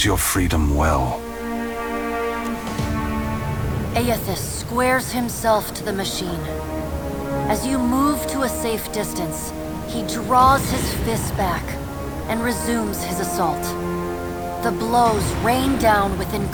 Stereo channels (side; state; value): both; identical; correlation 1.00